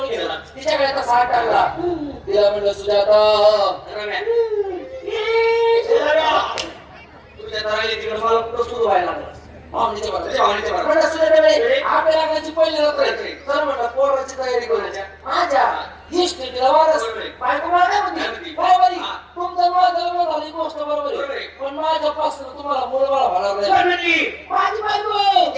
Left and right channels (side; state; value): both; identical; correlation 1.00